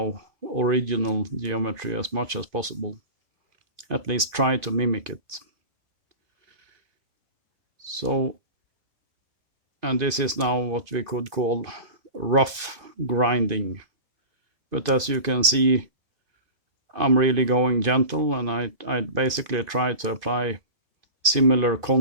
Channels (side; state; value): left; late; 2.5 ms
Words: original geometry as much as possible. At least try to mimic it. So, and this is now what we could call rough grinding. But as you can see, I'm really going gentle, and I basically try to apply similar